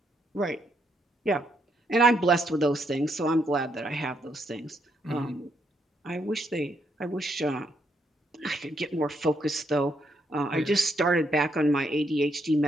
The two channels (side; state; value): both; normal; correlation 0.76